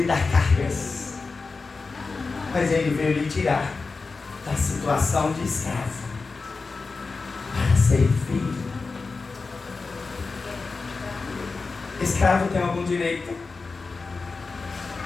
dar cargas, mas Ele veio lhe tirar da situação de escravo para ser filho. Escravo tem algum direito?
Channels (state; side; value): quieter; right; 4.2 dB